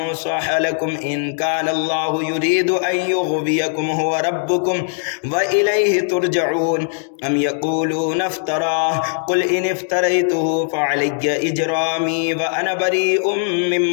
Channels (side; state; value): right; silent; digital silence